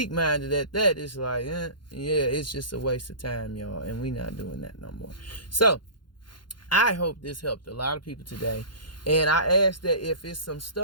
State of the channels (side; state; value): right; late; 0.71 ms